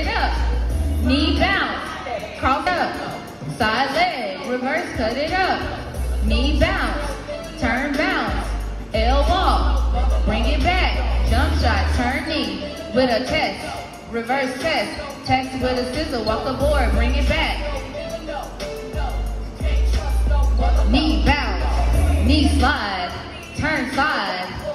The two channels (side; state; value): both; identical; correlation 1.00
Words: up. Knee bounce, cross up, side leg, reverse, cut it up. Knee bounce, turn bounce, L walk, bring it back, jump shot, turn knee, with a test, reverse test, test with a scissor, walk aboard, bring it back. Knee bounce, knee slide, turn side,